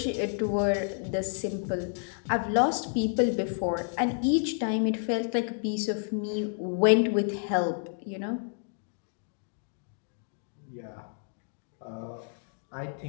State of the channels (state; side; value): silent; right; 58 dB below the other